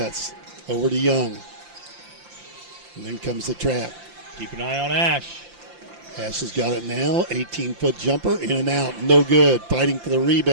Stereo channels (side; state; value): left; late; 5.8 ms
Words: Over to Young. And then comes the trap. Keep an eye on Ash. Ash has got it now. 18-foot jumper, in and out. No good. Fighting for the